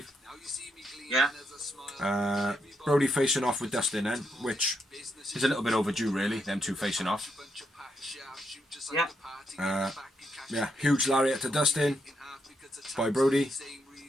Yeah. Brody facing off with Dustin then, which is a little bit overdue, really, them two facing off. Yeah. Huge lariat to Dustin by Brody.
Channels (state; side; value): normal; both; correlation 0.80